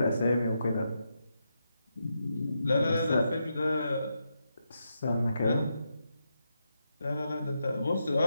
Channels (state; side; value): inverted; both; correlation -0.84